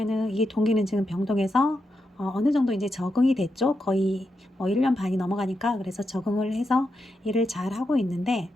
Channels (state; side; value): normal; both; correlation 0.85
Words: 이 동기는 지금 병동에서 어느 정도 이제 적응이 됐죠. 거의 1년 반이 넘어가니까 그래서 적응을 해서 일을 잘 하고 있는데